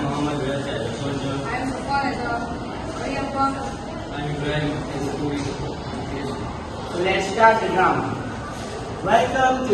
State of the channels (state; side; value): identical; both; correlation 1.00